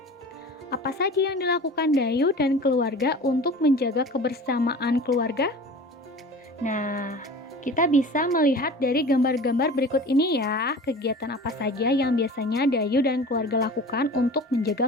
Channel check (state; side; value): normal; both; correlation 0.39